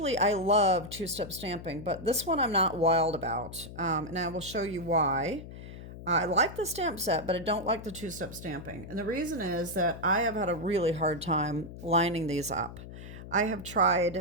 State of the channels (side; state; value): left; noise; hum, 13 dB below the sound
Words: I love two-step stamping, but this one I'm not wild about. And I will show you why. I like the stamp set, but I don't like the two-step stamping. And the reason is that I have had a really hard time lining these up. I have